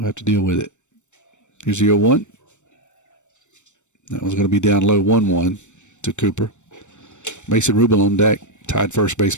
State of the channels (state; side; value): late; right; 0.84 ms